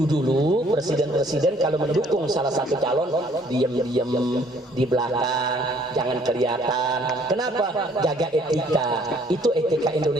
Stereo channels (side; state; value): both; normal; correlation 0.61